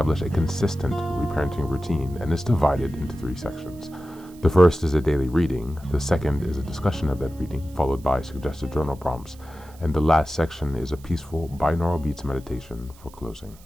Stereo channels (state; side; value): noise; right; hiss, 25 dB below the sound